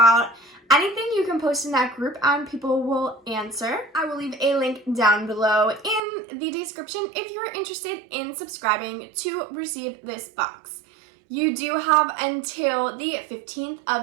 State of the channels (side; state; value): left; drops out; at 6.0 s